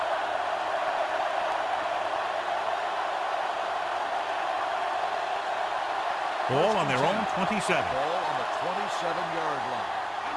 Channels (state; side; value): identical; both; correlation 1.00